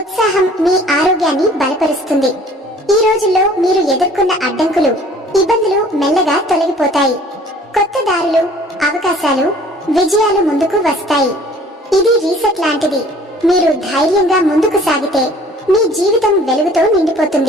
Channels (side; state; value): both; normal; correlation 0.52